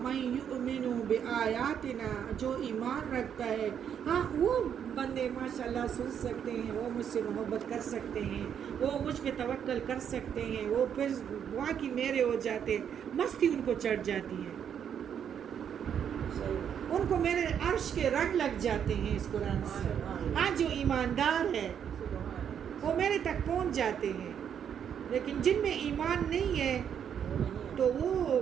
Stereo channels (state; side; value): quieter; left; 8.4 dB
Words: من یؤمن بآیاتنا جو ایمان رکھتا ہے. ہاں وہ بندے ماشاءاللہ سن سکتے ہیں وہ مجھ سے محبت کر سکتے ہیں وہ مجھ پہ توکل کر سکتے ہیں وہ پھر واقعی میرے ہو جاتے ہیں. مستی ان کو چڑھ جاتی ہے ان کو میرے عرش کے رنگ لگ جاتے ہیں اس قرآن سے. ہاں جو ایماندار ہے وہ میرے تک پہنچ جاتے ہیں لیکن جن میں ایمان نہیں ہے تو وہ